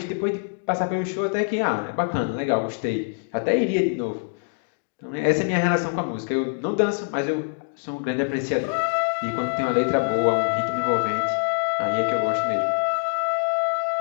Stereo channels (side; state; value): right; silent; digital silence